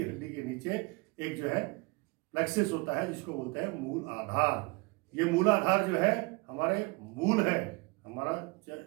हड्डी के नीचे एक जो है प्लेक्सिस होता है, जिसको बोलते हैं मूल आधार। ये मूल आधार जो है हमारे मूल है, हमारा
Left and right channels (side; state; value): left; quieter; 26.2 dB